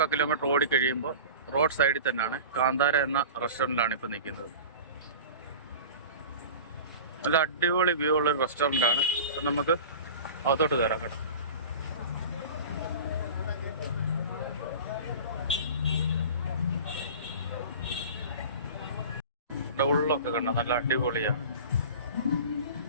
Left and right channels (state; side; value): inverted; both; correlation -0.36